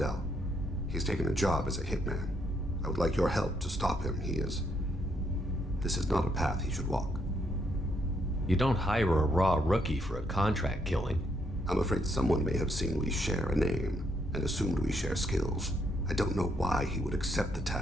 He's taken a job as a hitman. I would like your help to stop him. This is not a path he should walk. You don't hire a raw rookie for a contract killing. I'm afraid someone may have seen we share a name and assumed we share skills. I don't know why he would accept the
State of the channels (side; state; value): both; normal; correlation 0.74